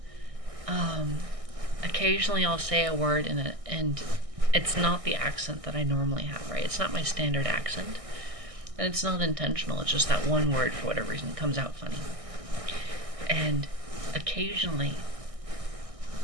occasionally I'll say a word and it's not the accent that I normally have, right? It's not my standard accent, and it's not intentional. It's just that one word, for whatever reason, comes out funny. And occasionally,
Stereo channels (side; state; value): left; late; 1.6 ms